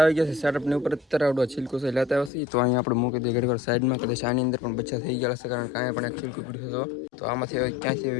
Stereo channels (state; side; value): drops out; right; at 2.3 s